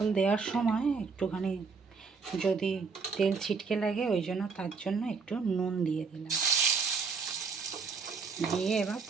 দেওয়ার সময় একটুখানি যদি তেল ছিটকে লাগে, ওই জন্য তার জন্য একটু নুন দিয়ে দিলাম। দিয়ে এবার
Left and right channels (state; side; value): quieter; left; 5.1 dB